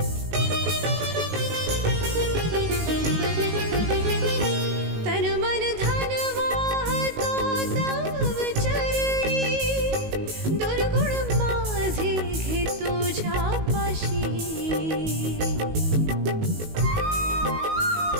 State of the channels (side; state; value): left; late; 19 ms